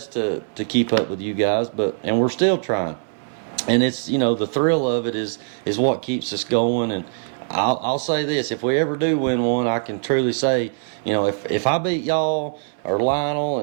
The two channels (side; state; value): left; silent; 62 dB below the other